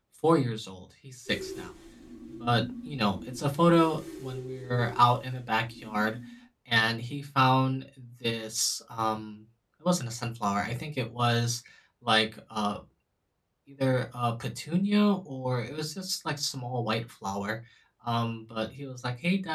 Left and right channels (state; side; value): identical; both; correlation 1.00